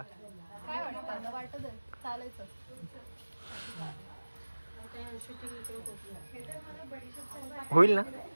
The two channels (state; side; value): inverted; both; correlation -1.00